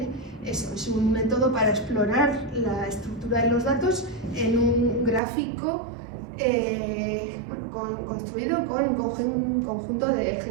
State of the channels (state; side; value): drops out; left; at 5.2 s